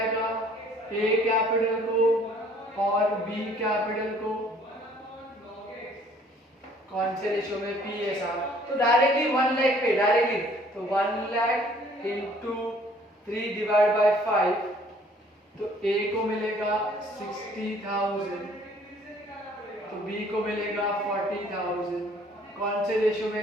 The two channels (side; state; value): both; normal; correlation 0.57